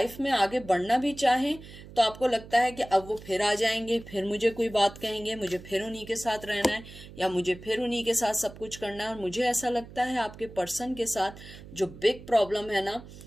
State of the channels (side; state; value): right; noise; hum, 17 dB below the sound